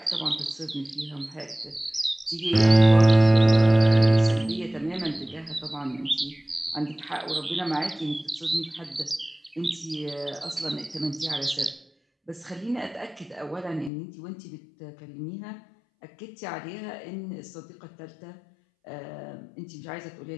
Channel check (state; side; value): drops out; right; at 13.9 s